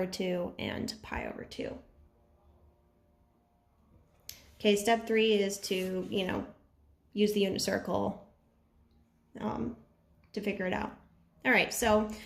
2 and pi over 2. Okay, step 3 is to, use the unit circle to figure it out. All right, so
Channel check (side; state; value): both; identical; correlation 1.00